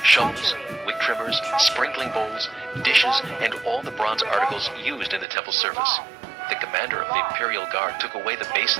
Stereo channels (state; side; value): drops out; left; at 5.2 s